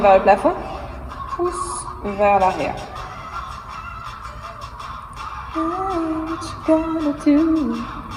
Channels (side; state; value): both; identical; correlation 1.00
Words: vers le plafond, pouce vers l'arrière.